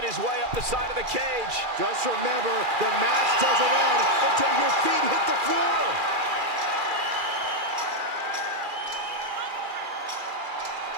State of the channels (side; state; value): left; late; 2.4 ms